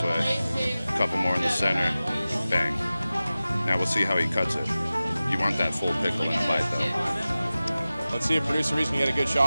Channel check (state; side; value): inverted; both; correlation -0.96